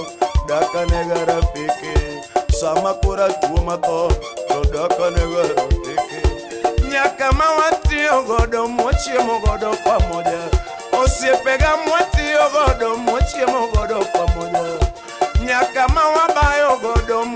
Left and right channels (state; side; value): identical; both; correlation 1.00